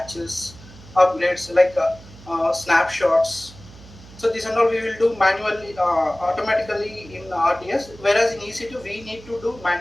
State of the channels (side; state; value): right; noise; hum, 20 dB below the sound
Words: upgrades like snapshots. So this and all we will do manually, automatically in RDS. Whereas in EC2 we need to do